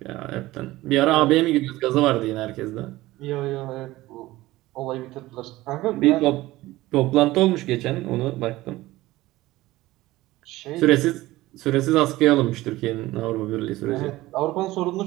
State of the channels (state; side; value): quieter; left; 17.8 dB